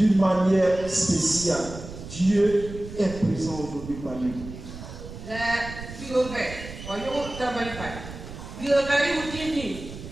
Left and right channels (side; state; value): right; noise; rumble, 12 dB below the sound